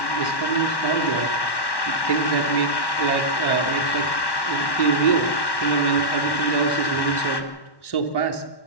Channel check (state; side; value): late; right; 1.1 ms